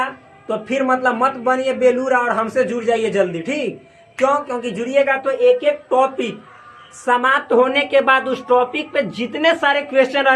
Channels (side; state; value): both; identical; correlation 1.00